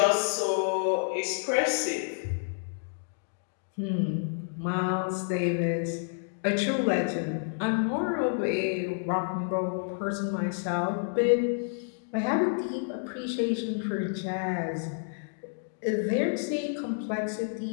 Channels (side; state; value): right; silent; digital silence